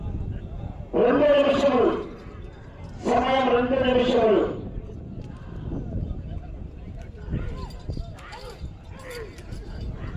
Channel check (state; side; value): identical; both; correlation 1.00